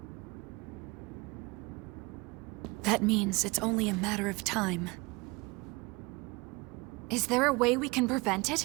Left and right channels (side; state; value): left; quieter; 25.6 dB